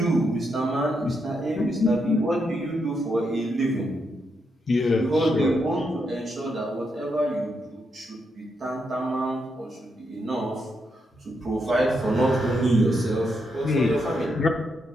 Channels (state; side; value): normal; both; correlation 0.81